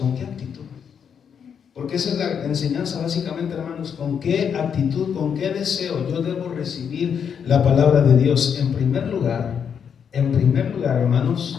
qué actitud? Porque esa es la enseñanza básicamente, hermanos. ¿Con qué actitud, con qué deseo yo debo recibir la palabra de Dios? En primer lugar,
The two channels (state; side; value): quieter; right; 7.4 dB